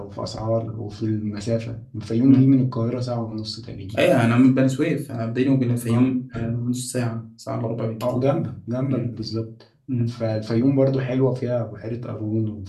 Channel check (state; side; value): identical; both; correlation 1.00